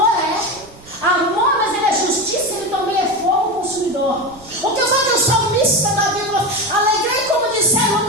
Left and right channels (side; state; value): right; noise; rumble, 23 dB below the sound